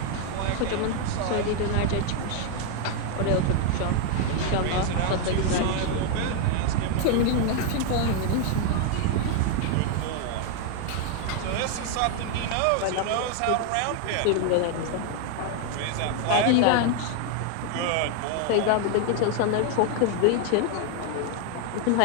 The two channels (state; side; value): different; both; correlation 0.00